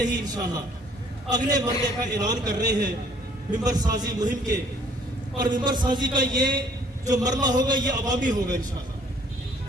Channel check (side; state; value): both; normal; correlation 0.59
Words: ہی انشاءاللہ اگلے مرحلے کا اعلان کر رہے ہیں ممبر سازی مہم کے. اور ممبر سازی کا یہ جو مرحلہ ہوگا یہ عوامی ہوگا انشاءاللہ.